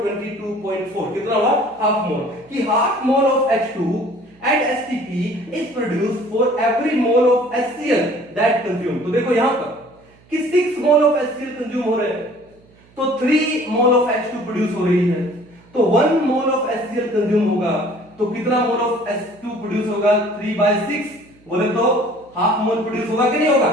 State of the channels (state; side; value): noise; right; hum, 29 dB below the sound